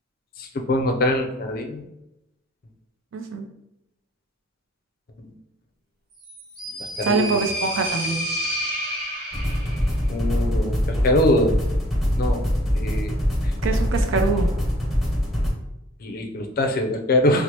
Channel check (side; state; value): both; normal; correlation 0.50